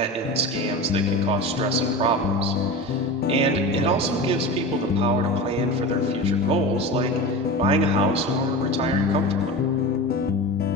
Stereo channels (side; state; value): both; normal; correlation 0.29